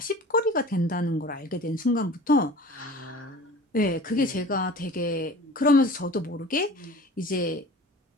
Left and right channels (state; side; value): normal; both; correlation 0.41